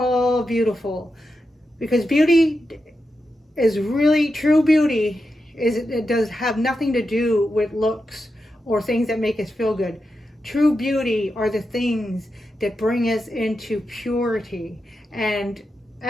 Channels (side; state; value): both; normal; correlation 0.88